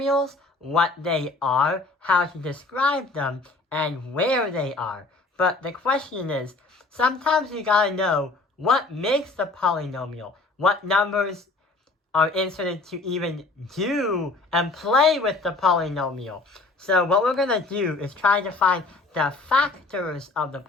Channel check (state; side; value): quieter; right; 3.5 dB